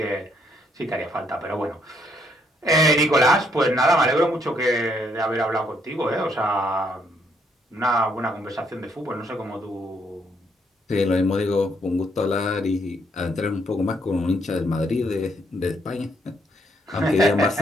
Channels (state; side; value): normal; both; correlation 0.72